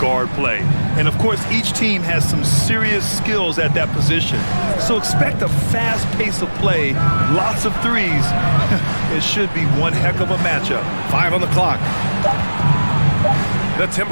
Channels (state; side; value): inverted; both; correlation -1.00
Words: play. And, of course, each team has some serious skills at that position. So expect a fast pace of play, lots of threes. It should be one heck of a matchup. 5 on the clock. The